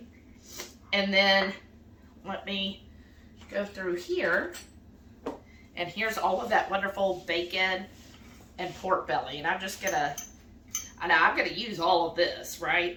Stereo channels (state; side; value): identical; both; correlation 1.00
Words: And then let me go through here. And here's all of that wonderful bacon and pork belly. And I'm just going to, I know I'm going to use all of this, right?